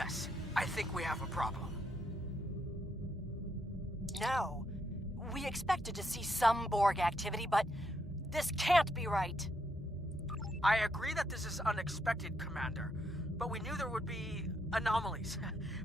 I think we have a problem. No. We expected to see some Borg activity, but This can't be right. I agree that this is unexpected, Commander, but we knew there would be anomalies.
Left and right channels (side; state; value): both; normal; correlation 0.76